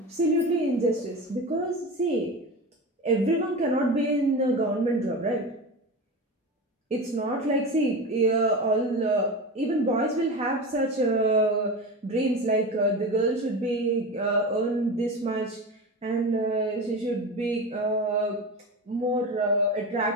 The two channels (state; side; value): normal; both; correlation 0.27